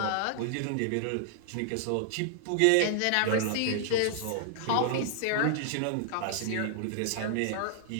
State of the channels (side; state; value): both; different; correlation 0.00